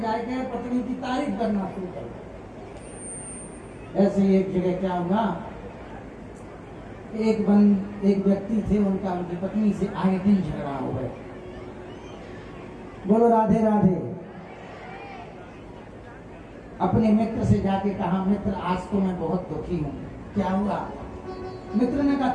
जाके पत्नी की तारीफ करना शुरू करो। ऐसे ही एक जगह क्या हुआ, एक व्यक्ति थे, उनकी पत्नी से आए दिन झगड़ा हो गए। बोलो राधे राधे। अपने मित्र से जाके कहा, मित्र आज तो मैं बहुत दुखी हूँ। क्या हुआ? मित्र ने कहा,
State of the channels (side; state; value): both; identical; correlation 1.00